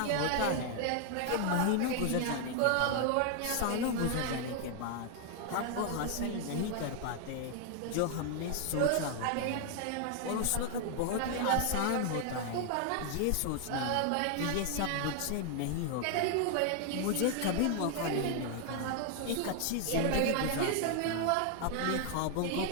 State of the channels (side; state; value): both; different; correlation 0.00